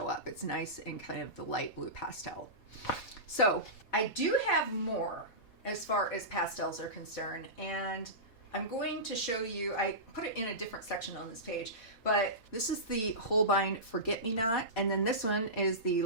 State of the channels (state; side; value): late; right; 4.4 ms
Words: up. It's nice in kind of the light blue pastel. So I do have more as far as pastels are concerned, and I'm going to show you, I put it in a different section on this page, but this is the Holbein Forget-Me-Not, and then this one is the